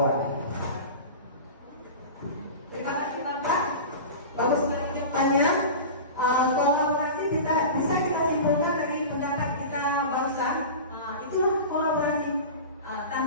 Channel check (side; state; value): both; inverted; correlation -0.31